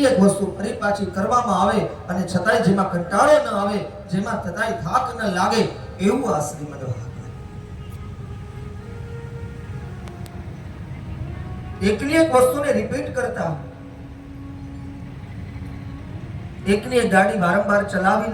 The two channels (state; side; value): identical; both; correlation 1.00